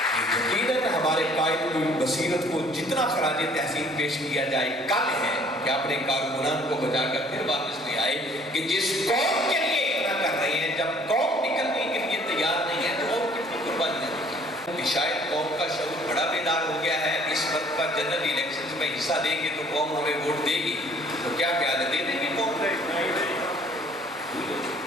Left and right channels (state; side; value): normal; both; correlation 0.57